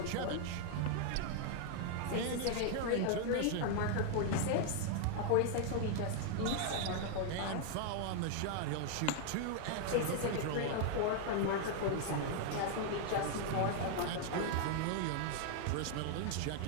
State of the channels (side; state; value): both; different; correlation 0.00